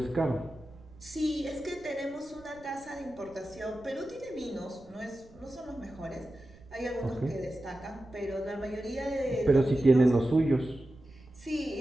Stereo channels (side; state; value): right; noise; rumble, 24 dB below the sound